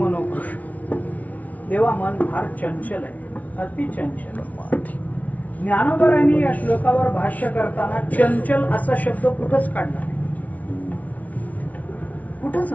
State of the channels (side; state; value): right; late; 0.071 ms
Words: देवा मन फार चंचल आहे, अति चंचल. ज्ञानोबरांनी या श्लोकावर भाष्य करताना चंचल असा शब्द कुठंच काढला नाही, कुठंच